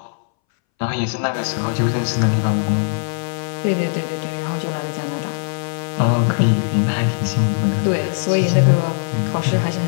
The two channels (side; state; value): right; silent; 63 dB below the other